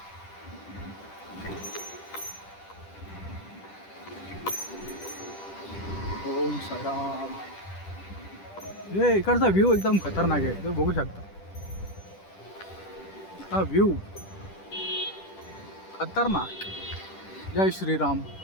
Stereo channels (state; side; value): late; right; 10 ms